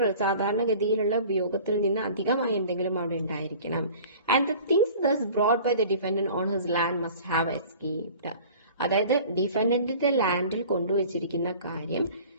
സാധാരണഗതിയിലുള്ള ഉപയോഗത്തിൽ നിന്ന് അധികമായി എന്തെങ്കിലും അവിടെ ഉണ്ടായിരിക്കണം. And the things thus brought by the defendant on his land must have escaped. അതായത് ഡിഫൻഡന്റിന്റെ ലാൻഡിൽ കൊണ്ടുവച്ചിരിക്കുന്ന കാര്യം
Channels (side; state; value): both; inverted; correlation -0.44